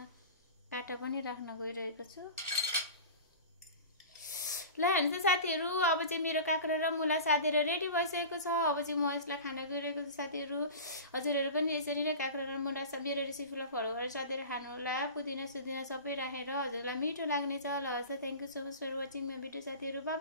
काँटा पनि राख्न गइरहेको छु। ल हेर्नुस् त साथीहरु, अब चाहिँ मेरो काँक्रा र मुला साथीहरु रेडी भइसकेको छ। अब चाहिँ म यसलाई खान गइरहेको छु साथीहरु। हजुरहरु पनि यसरी नै काँक्रा र मुला मेरो रेसिपीलाई फलो गरेर साथीहरु खानु होला। पुदिना सुदिना सबै राखेर हजुरलाई मिठो लाग्नेछ। ल हस्, thank you so much for watching my video साथीहरु। Bye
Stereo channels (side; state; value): both; inverted; correlation -0.35